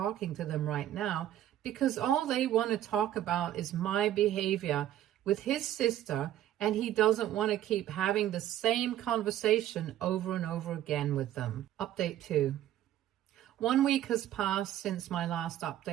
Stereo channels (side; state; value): left; quieter; 12.5 dB